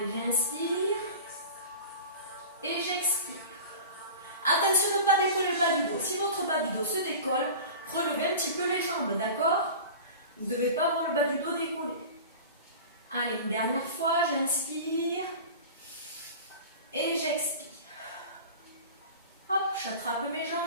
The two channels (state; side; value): inverted; both; correlation -0.35